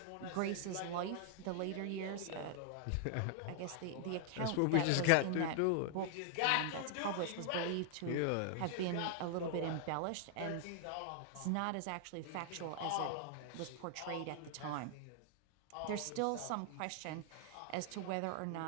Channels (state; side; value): different; both; correlation 0.00